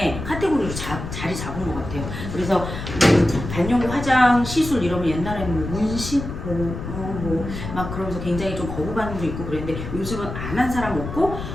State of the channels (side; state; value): left; noise; rumble, 7 dB below the sound